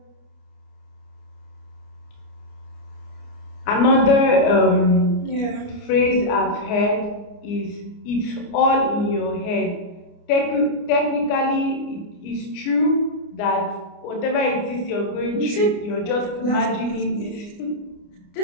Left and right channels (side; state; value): right; late; 29 ms